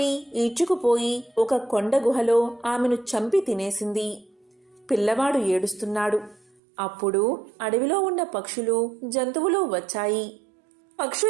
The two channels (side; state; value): left; drops out; at 6.5 s